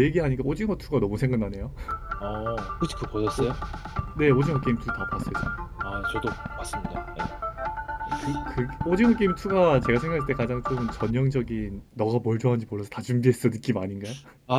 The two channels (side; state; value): both; identical; correlation 1.00